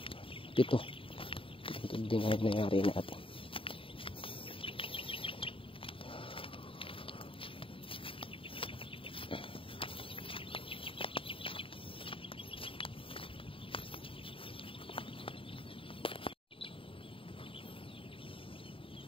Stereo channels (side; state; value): right; late; 0.26 ms